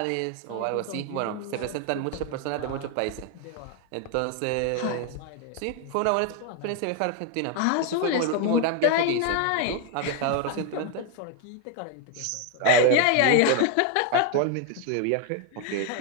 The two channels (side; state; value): both; different; correlation 0.00